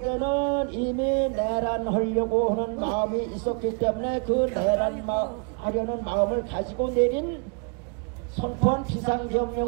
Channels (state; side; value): quieter; left; 36.2 dB